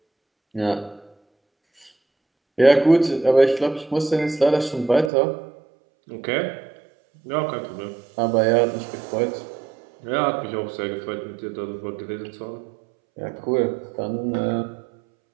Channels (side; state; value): left; drops out; at 5.1 s